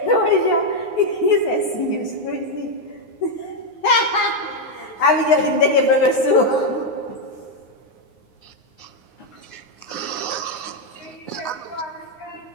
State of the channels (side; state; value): right; late; 9.6 ms